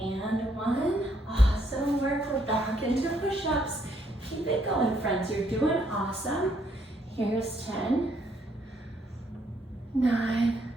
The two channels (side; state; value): both; normal; correlation 0.71